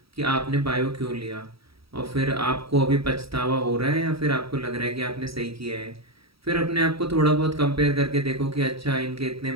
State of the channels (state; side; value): late; left; 0.76 ms